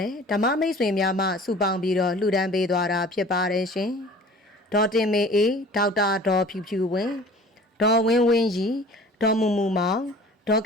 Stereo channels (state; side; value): normal; both; correlation 0.46